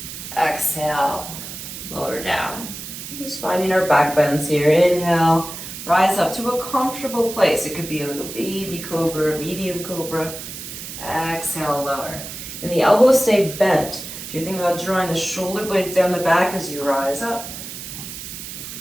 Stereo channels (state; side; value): noise; right; hiss, 10 dB below the sound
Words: Exhale, lower down. Just finding our back bends here. Inhale, rise up to a comfortable place. It could be a little baby cobra, medium cobra. Exhale, lower. And the elbows stay bent. So you're thinking about drawing the shoulder blades down the back as you rise up.